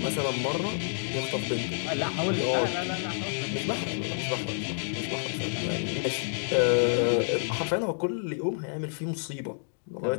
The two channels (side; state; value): right; silent; digital silence